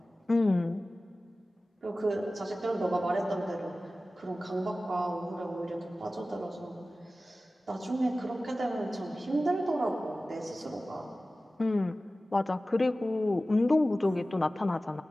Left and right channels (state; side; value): normal; both; correlation 0.96